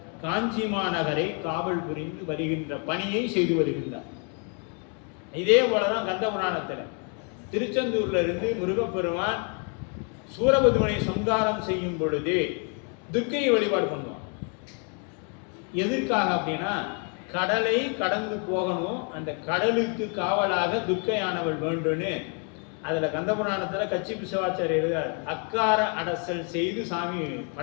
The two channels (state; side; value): quieter; right; 38.8 dB